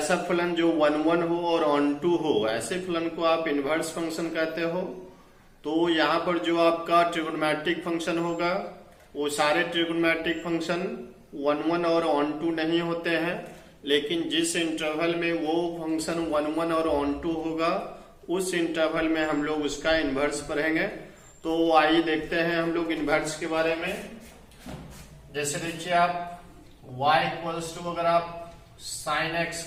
फलन जो वन वन हो और ऑन टू हो, ऐसे फलन को आप इनवर्स फंक्शन कहते हो। तो यहाँ पर जो आपका ट्रिगोनोमेट्रिक फंक्शन होगा वो सारे ट्रिगोनोमेट्रिक फंक्शन वन वन और ऑन टू नहीं होते हैं, लेकिन जिस इंटरवल में वो फंक्शन वन वन और ऑन टू होगा उस इंटरवल में हम लोग उसका इनवर्स पढ़ेंगे। तो आइए देखते हैं हम लोग इनवर्स के बारे में। जैसे देखिए आप y इक्वल्स टू अगर आप साइन x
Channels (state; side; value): identical; both; correlation 1.00